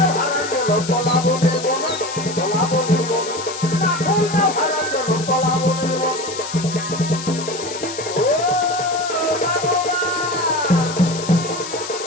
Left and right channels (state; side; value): noise; left; hiss, 10 dB below the sound